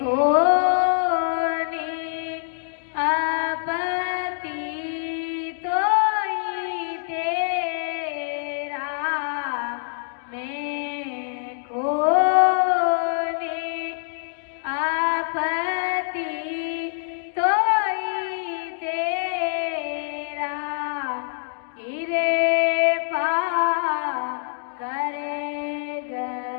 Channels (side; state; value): right; silent; digital silence